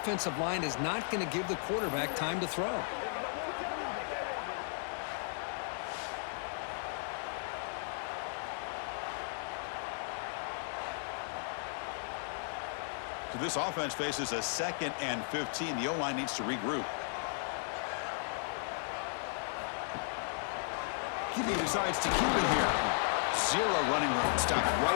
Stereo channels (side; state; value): right; silent; digital silence